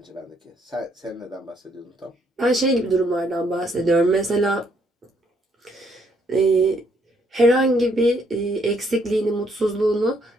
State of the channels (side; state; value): both; normal; correlation 0.69